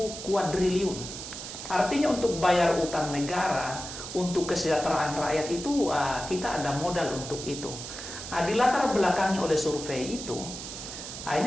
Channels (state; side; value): noise; right; hiss, 9 dB below the sound